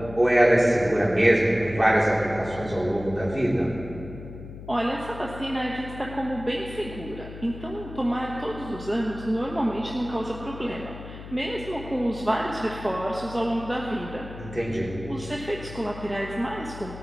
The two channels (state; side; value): noise; left; hum, 13 dB below the sound